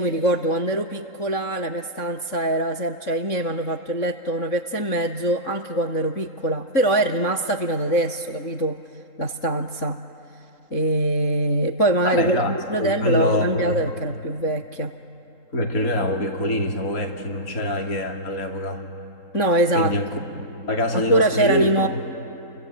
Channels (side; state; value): right; late; 3.8 ms